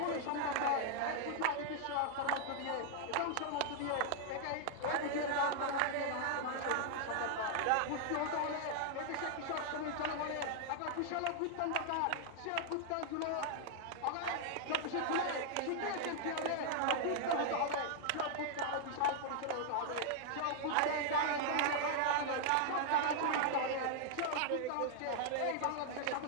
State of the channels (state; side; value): different; both; correlation 0.00